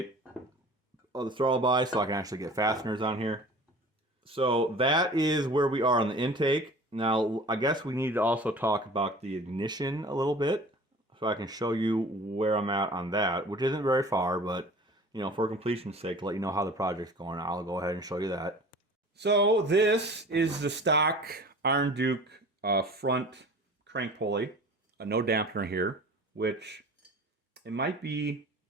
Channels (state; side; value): normal; both; correlation 0.42